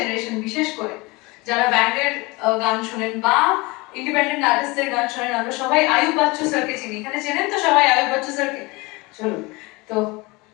বিশেষ করে যারা ব্যান্ডের গান শোনেন বা ইন্ডিপেন্ডেন্ট আর্টিস্টদের গান শোনেন, আমরা সবাই আয়ুব বাচ্চু স্যারকে চিনি। এখানে চেনেন তো সবাই আয়ুব বাচ্চু স্যারকে? চলুন, তো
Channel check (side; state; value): right; quieter; 24.5 dB